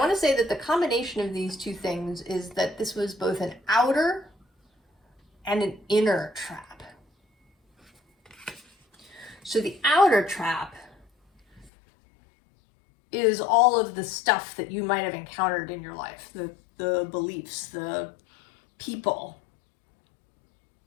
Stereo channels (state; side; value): drops out; right; at 11.7 s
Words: to say that the combination of these two things is that this was both an outer and an inner trap. So the outer trap is all of the stuff that you might have encountered in your life, the beliefs, the people